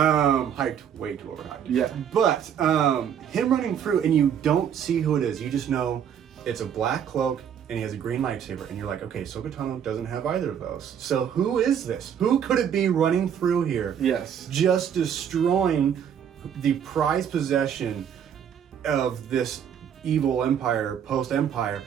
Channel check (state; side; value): quieter; left; 8.6 dB